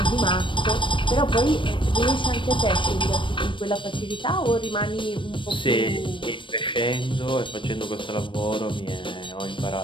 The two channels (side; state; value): right; late; 0.24 ms